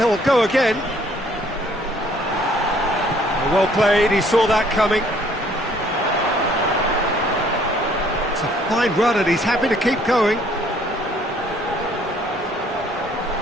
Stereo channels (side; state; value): both; normal; correlation 0.61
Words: go again. Well played, he saw that coming. It's a fine run and he's happy to keep going.